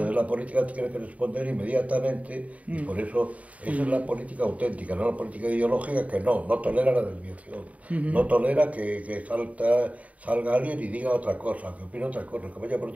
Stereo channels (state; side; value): late; left; 0.069 ms